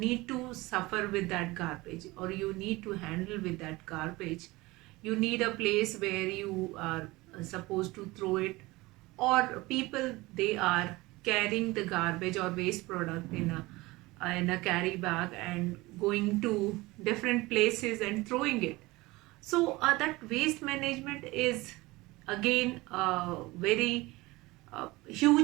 to suffer with that garbage, or you need to handle with that garbage. You need a place where you are supposed to throw it, or people, they are carrying the garbage or waste product in a carry bag and going to different places and throwing it. So that waste management is again a very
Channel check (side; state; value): left; quieter; 21.2 dB